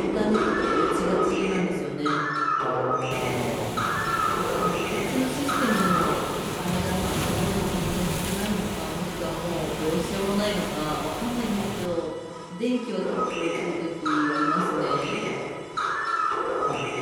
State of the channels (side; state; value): both; identical; correlation 1.00